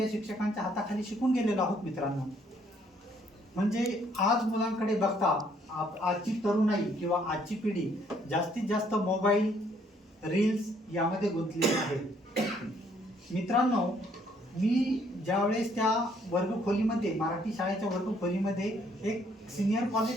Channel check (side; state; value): both; normal; correlation 0.66